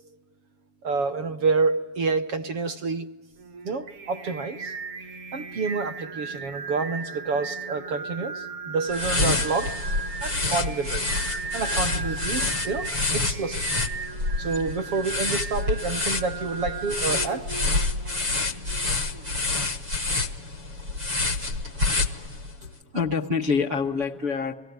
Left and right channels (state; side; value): late; left; 7.1 ms